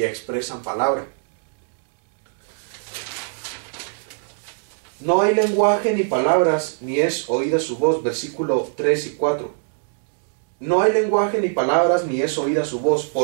expresan palabra. No hay lenguaje ni palabras, ni es oída su voz, versículo 3 y 4. No hay lenguaje ni palabras, ni es oída su voz.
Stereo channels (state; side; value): silent; left; digital silence